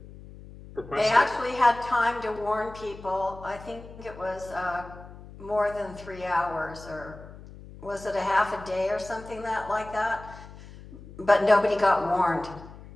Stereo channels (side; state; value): left; noise; hum, 17 dB below the sound